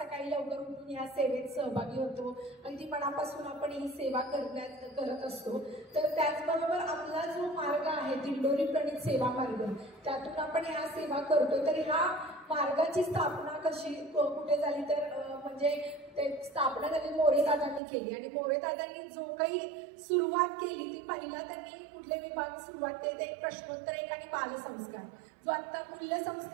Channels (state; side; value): drops out; left; at 17.8 s